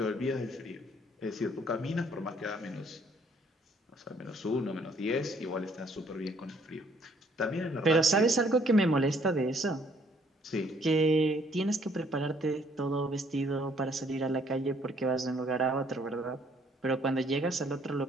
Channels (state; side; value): normal; both; correlation 0.64